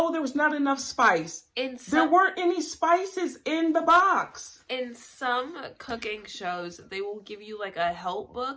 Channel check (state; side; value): identical; both; correlation 1.00